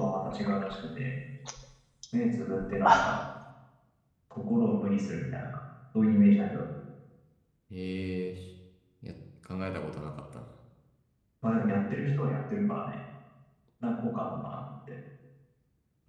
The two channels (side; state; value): both; identical; correlation 1.00